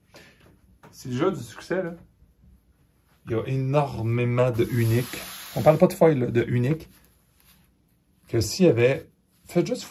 Si le jeu a du succès, là, il y a énormément de uniques. On ne parle pas de foil, là, de uniques. Que s'il y avait... Faites juste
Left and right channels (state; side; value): identical; both; correlation 1.00